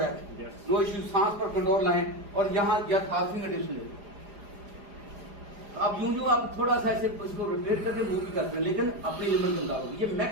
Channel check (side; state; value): left; late; 4.9 ms